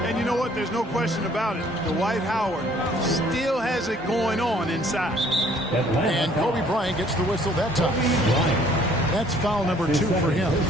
you know what? There's no question about it. Dwight Howard still has it going on inside. And Kobe Bryant gets the whistle that time. That's foul number 2 for him.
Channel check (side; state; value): both; normal; correlation 0.59